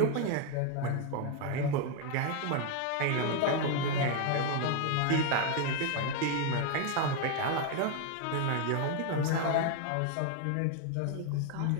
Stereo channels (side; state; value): both; different; correlation 0.01